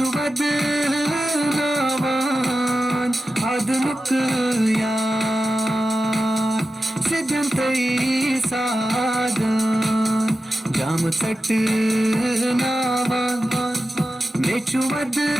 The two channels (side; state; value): both; normal; correlation 0.92